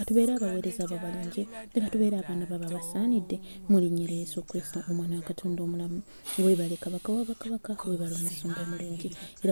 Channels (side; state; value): both; inverted; correlation -1.00